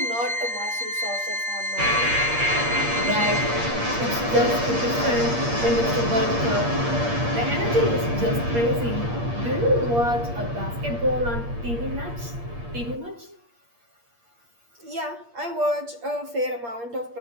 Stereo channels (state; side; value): late; left; 8.5 ms